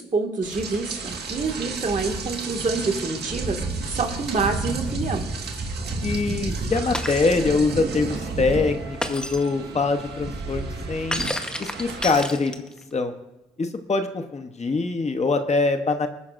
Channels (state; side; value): normal; both; correlation 0.61